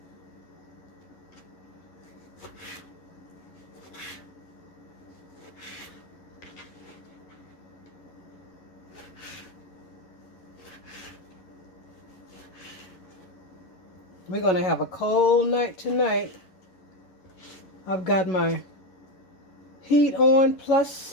We're going to have a cold night tonight. I've got my heat on,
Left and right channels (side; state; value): right; late; 11 ms